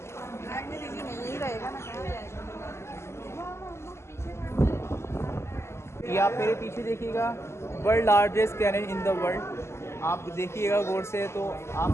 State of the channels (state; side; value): late; right; 0.13 ms